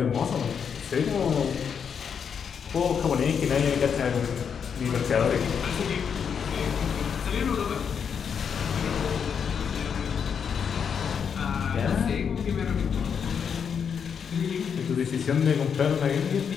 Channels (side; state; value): right; quieter; 7.0 dB